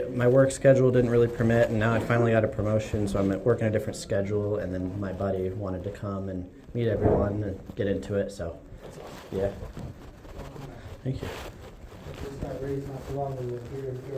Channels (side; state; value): both; identical; correlation 1.00